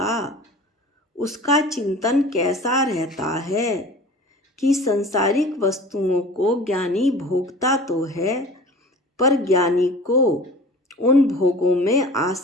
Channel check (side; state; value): both; normal; correlation 0.41